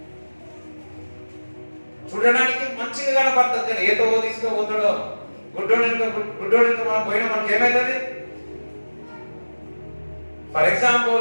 చూడడానికి మంచిగా కనపడుతుంది, కానీ ఏదో తీసుకుపోతాడో గుడ్డోడు మనం పోయినా మనకి ఏమైతుంది? ఫర్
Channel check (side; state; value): both; inverted; correlation -1.00